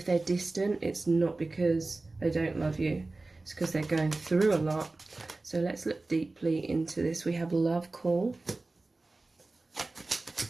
they're distant, it's not because they don't love you. It's because they're going through a lot. So let's look deeply into this. We have Love Call.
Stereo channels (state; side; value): quieter; left; 3.3 dB